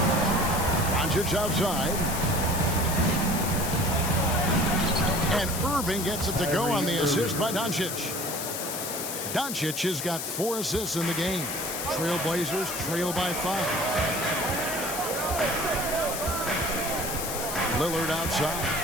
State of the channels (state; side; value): noise; left; hiss, 5 dB below the sound